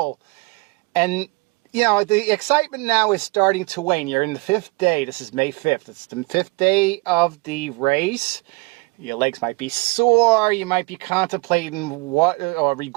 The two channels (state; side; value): quieter; left; 26.7 dB